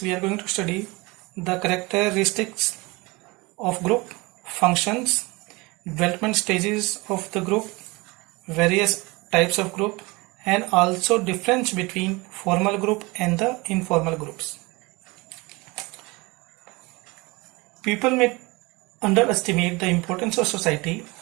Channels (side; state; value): left; quieter; 24.7 dB